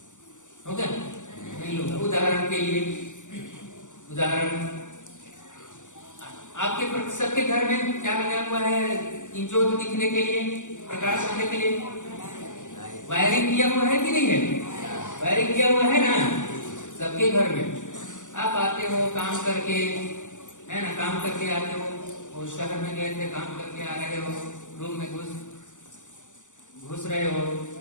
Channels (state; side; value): late; right; 0.86 ms